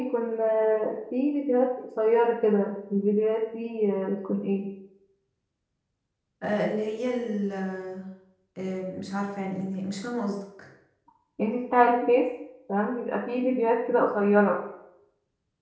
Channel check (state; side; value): identical; both; correlation 1.00